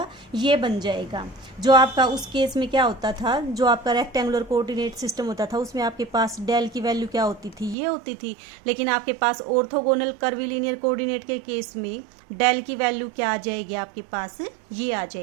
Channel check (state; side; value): drops out; left; at 7.8 s